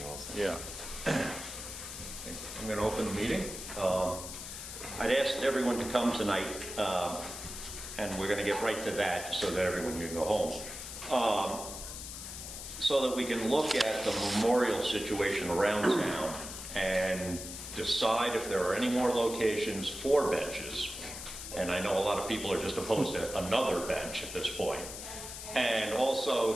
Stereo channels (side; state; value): left; noise; hiss, 9 dB below the sound